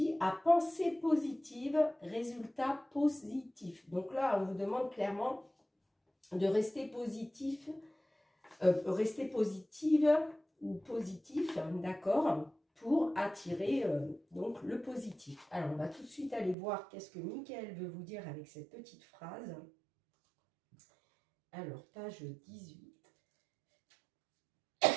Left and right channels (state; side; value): drops out; left; at 16.6 s